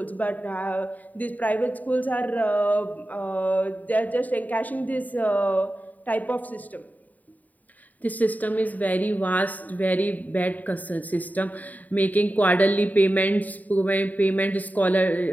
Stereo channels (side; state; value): right; late; 0.077 ms